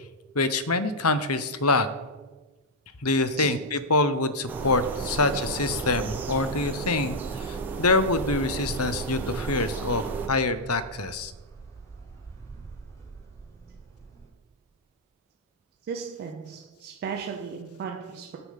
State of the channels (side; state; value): both; normal; correlation -0.05